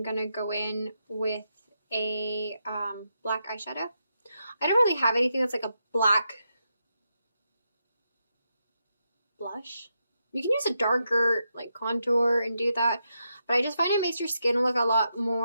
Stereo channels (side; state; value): both; inverted; correlation -0.84